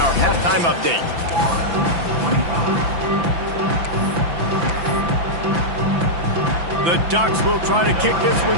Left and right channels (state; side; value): late; left; 5.9 ms